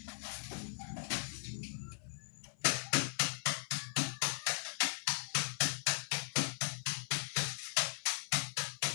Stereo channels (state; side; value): silent; right; 52 dB below the other